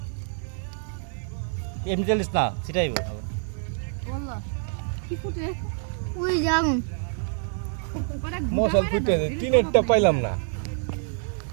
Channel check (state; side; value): silent; left; digital silence